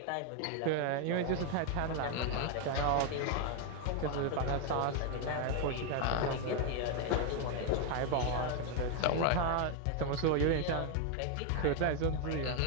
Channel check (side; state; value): both; different; correlation 0.00